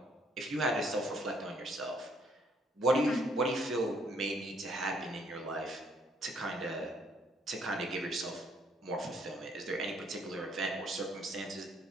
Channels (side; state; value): both; normal; correlation 0.66